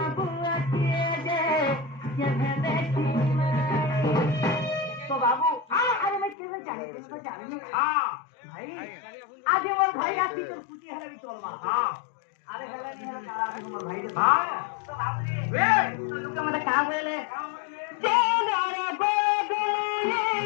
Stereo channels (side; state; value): right; drops out; at 6.4 s